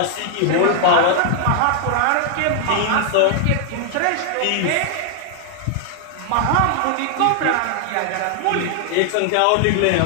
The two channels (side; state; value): both; different; correlation 0.00